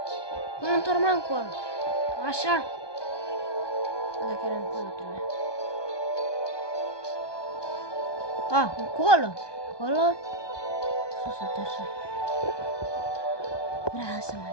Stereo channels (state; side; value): late; right; 1.2 ms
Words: Cum mă întorc mă încolo? Așa? Dacă era încolo trebuie. A, încolo. Încolo. Sus, uite așa. Vreau să mă